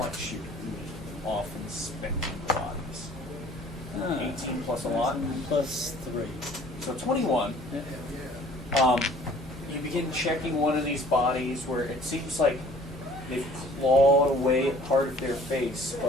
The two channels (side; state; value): both; normal; correlation 0.52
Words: you off inspecting the bodies. 18 plus a lot. Plus 3. So 21. You begin checking one of these bodies where it seems like they've clawed away at part of their face,